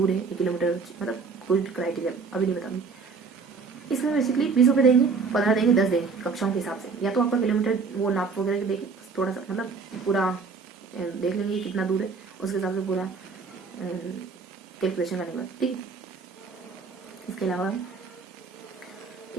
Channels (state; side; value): quieter; left; 4.9 dB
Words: है 1 किलोमीटर, मतलब कुछ क्राइटेरिया अभी नहीं बताऊंगी, इसमें बेसिकली 20 रुपये देंगे, 15 देंगे, 10 देंगे कक्षाओं के हिसाब से, या तो आपका किलोमीटर वो नाप वगैरह देखें थोड़ा सा, मतलब पूरा देख लेंगे कितना दूर है, उसके हिसाब से पूरा कैलकुलेशन करने के बाद, ठीक है। इसके अलावा